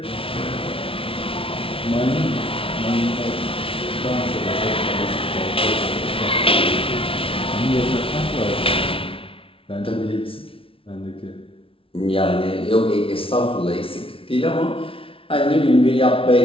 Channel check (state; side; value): late; right; 0.26 ms